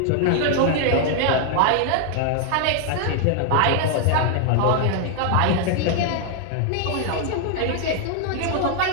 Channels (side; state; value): both; different; correlation 0.00